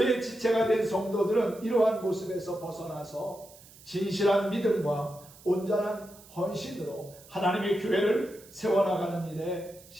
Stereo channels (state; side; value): noise; right; hiss, 22 dB below the sound